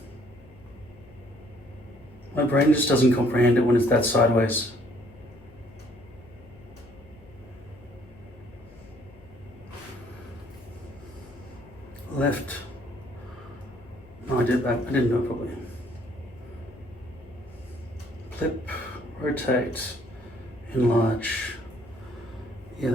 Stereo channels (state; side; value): noise; left; hum, 23 dB below the sound